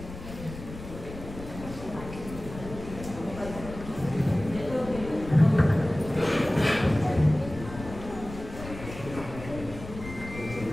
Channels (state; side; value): noise; left; rumble, 12 dB below the sound